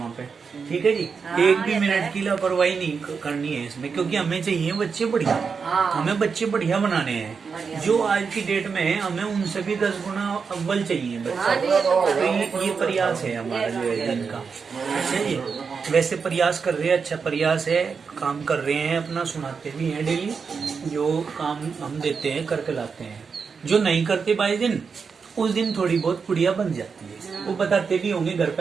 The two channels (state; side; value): quieter; left; 5.6 dB